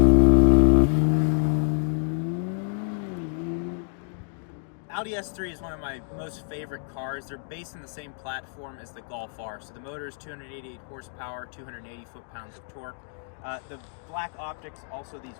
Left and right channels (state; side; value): silent; right; digital silence